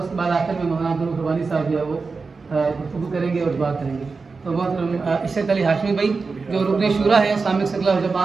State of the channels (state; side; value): quieter; left; 4.4 dB